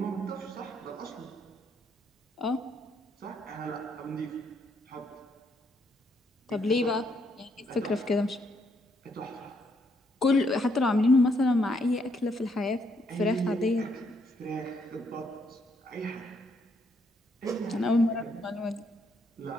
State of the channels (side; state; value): both; normal; correlation 0.73